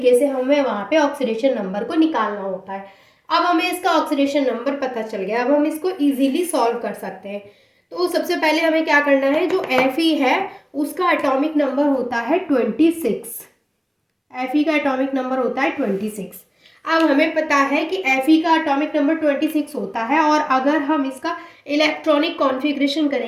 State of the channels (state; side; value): identical; both; correlation 1.00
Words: से हमें वहाँ पे ऑक्सीडेशन नंबर को निकालना होता है। अब हमें इसका ऑक्सीडेशन नंबर पता चल गया, अब हम इसको इजीली सॉल्व कर सकते हैं। तो सबसे पहले हमें क्या करना है, जो Fe है उसका एटॉमिक नंबर होता है 26। Fe का एटॉमिक नंबर होता है 26। अब हमें पता है कि Fe का एटॉमिक नंबर 26 होता है, और अगर हम इसका इलेक्ट्रॉनिक कॉन्फ़िगरेशन